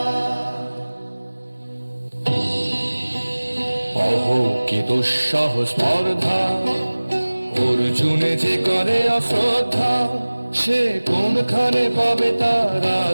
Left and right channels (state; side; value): inverted; both; correlation -1.00